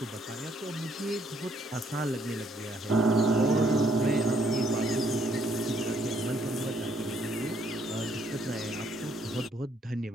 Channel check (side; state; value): both; normal; correlation 0.69